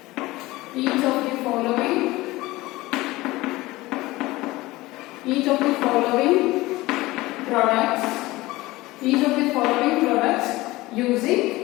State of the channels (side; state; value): right; quieter; 19.5 dB